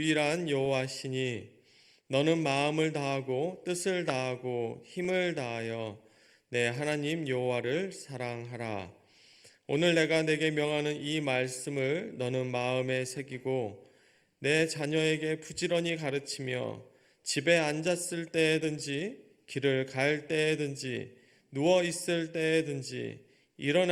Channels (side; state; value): both; identical; correlation 1.00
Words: 여호와시니 너는 마음을 다하고 뜻을 다하고 힘을 다하여 내 하나님 여호와를 사랑하라. 오늘 내가 내게 명하는 이 말씀을 너는 마음에 새기고 내 자녀에게 부지런히 가르치며 집에 앉았을 때든지 길을 갈 때든지 누워 있을 때든지